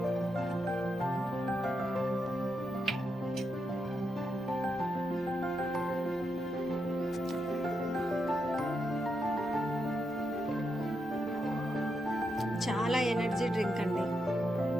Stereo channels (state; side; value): normal; both; correlation 0.83